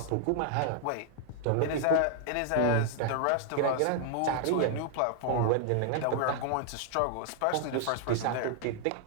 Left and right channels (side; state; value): both; different; correlation 0.00